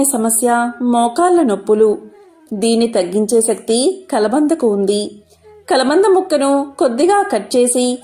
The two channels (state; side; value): identical; both; correlation 1.00